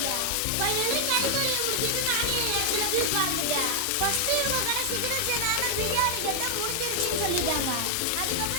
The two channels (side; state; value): both; different; correlation 0.00